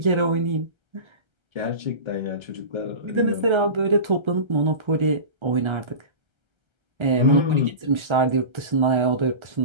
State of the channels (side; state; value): left; late; 1.3 ms